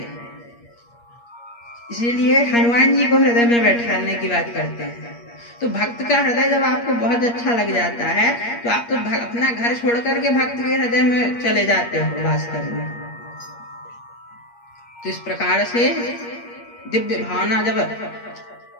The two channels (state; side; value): late; right; 8.5 ms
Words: इसीलिए हनुमान जी को हृदय में बैठाने की बात करते हैं। तो भक्त का हृदय जब आपको बहुत अच्छा लग जाता है तो आप तो अपना घर छोड़ करके भक्त के हृदय में चले जाते हो वास करने। तो इस प्रकार से दिव्य भावना जब